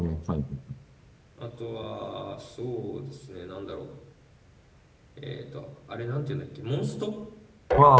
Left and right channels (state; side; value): identical; both; correlation 1.00